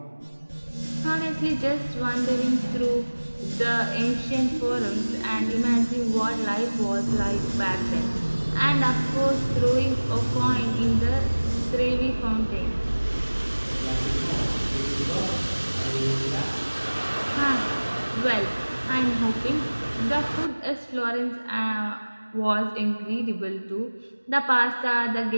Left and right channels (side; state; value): both; inverted; correlation -1.00